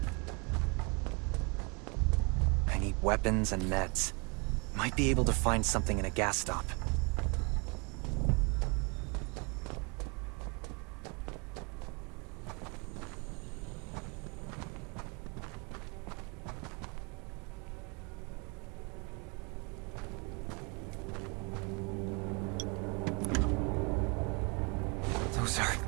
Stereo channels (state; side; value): quieter; left; 32.1 dB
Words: I need weapons and meds. Might be able to find something in a gas stop. Those are